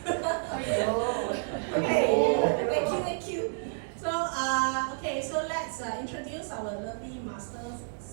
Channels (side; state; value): left; silent; digital silence